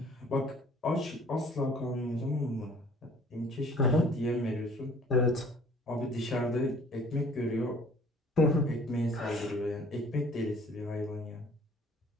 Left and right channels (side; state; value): both; normal; correlation 0.54